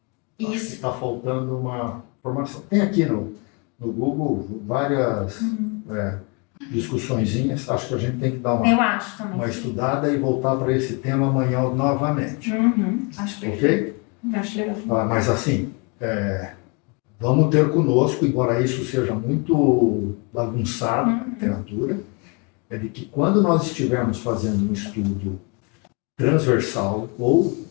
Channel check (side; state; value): right; quieter; 32.7 dB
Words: que Isso. está faltando uma formação. Tem aqui no Google várias discussõezinhas. Acho que a gente tem que dar Eu acho também. uma estudada e voltar para esse tema amanhã novamente. Acho perfeito. Ok? Acho legal. Mas assim, vamos ter conosco, embora isso seja muito bagunçado na literatura, é de que quando nós estivermos fazendo um estudo transversal ou,